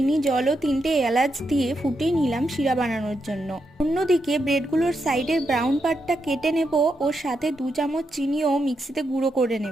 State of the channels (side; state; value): both; normal; correlation 0.83